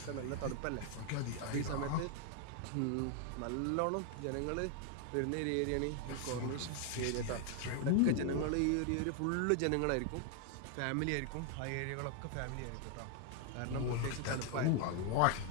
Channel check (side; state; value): both; different; correlation 0.00